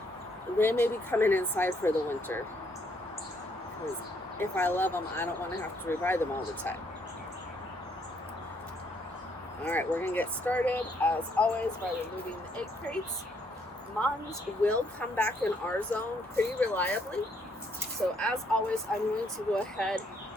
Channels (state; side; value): normal; both; correlation 0.70